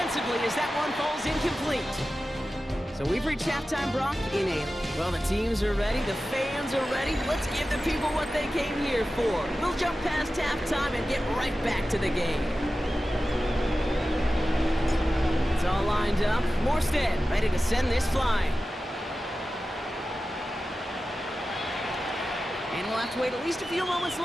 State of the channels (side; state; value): both; normal; correlation 0.94